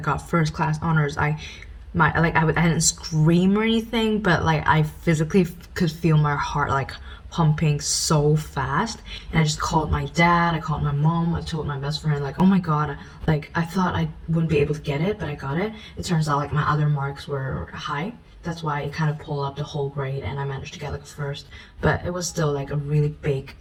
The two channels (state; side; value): identical; both; correlation 1.00